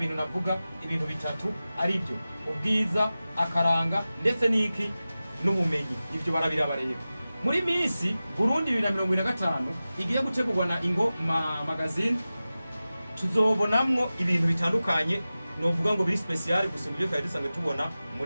navuga ibintu bitatu ari byo: ubwiza, akaranga ndetse n'iki n'ubumenyi, ivyo barabiraba rero. Muri Miss Burundi 2025 igiye gutegurwa na Ingo Magazine, tuzobonamwo ibintu bitandukanye novuga ngo biri special gusumba ibyo twari dusanzwe tubona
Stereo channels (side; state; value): both; inverted; correlation -0.96